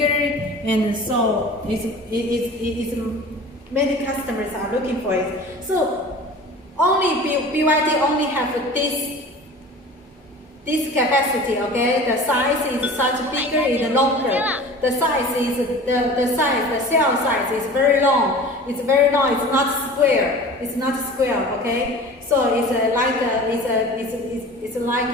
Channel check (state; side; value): normal; both; correlation 0.39